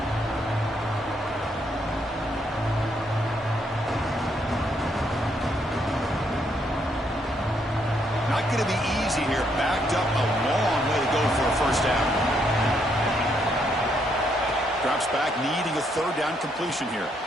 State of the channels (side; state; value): both; normal; correlation 0.74